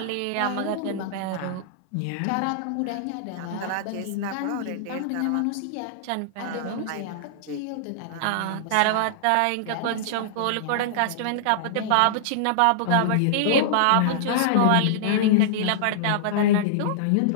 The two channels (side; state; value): both; different; correlation -0.02